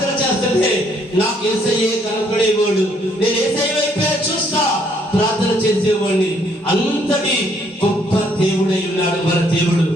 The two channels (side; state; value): both; normal; correlation 0.67